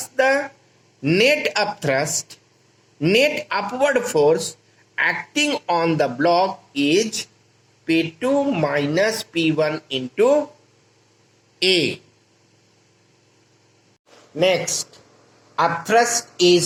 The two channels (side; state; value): both; identical; correlation 1.00